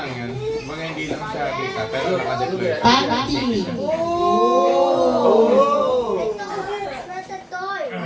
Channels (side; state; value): both; identical; correlation 1.00